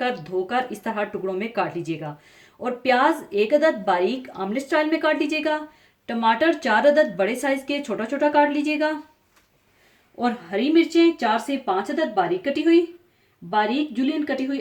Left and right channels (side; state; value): both; identical; correlation 1.00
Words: धोकर इस तरह टुकड़ों में काट लीजिएगा। और प्याज 1 अदद बारीक आमलेट स्टाइल में काट लीजिएगा। टमाटर 4 अदद बड़े साइज के छोटा छोटा काट लीजिएगा। और हरी मिर्चें 4 से 5 अदद बारीक कटी हुई, बारीक जुलियन कटी हुई